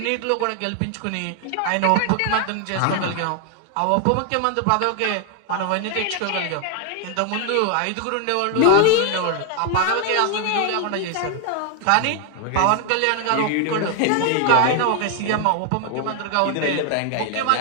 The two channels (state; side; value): different; both; correlation 0.00